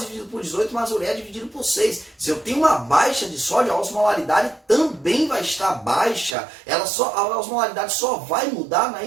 dividido por 18 mais ureia dividido por 6. Se eu tenho uma baixa de sódio, a osmolaridade também vai estar baixa. A osmolaridade só vai mudar na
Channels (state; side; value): drops out; left; at 6.4 s